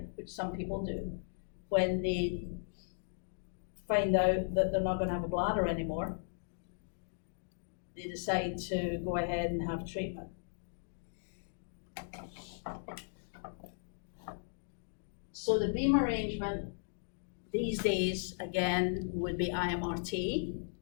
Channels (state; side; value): silent; right; digital silence